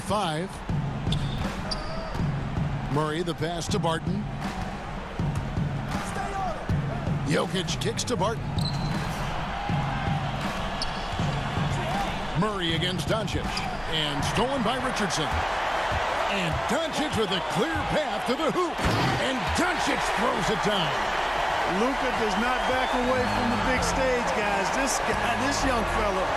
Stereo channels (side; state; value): both; identical; correlation 1.00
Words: Murray, the pass to Barton. Jokic kicks to Barton. Murray against Doncic. And stolen by Richardson. And Doncic with a clear path to the hoop. And Doncic throws it down. Luka does not back away from the big stage, guys. This young fella